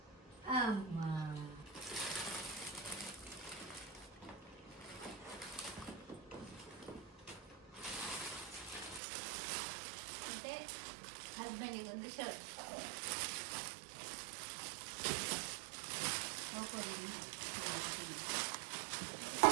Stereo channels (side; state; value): left; drops out; at 9.0 s